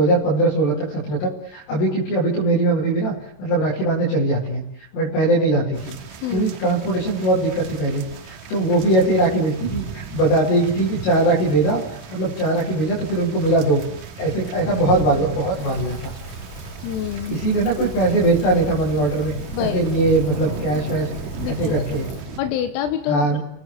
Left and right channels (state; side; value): late; right; 27 ms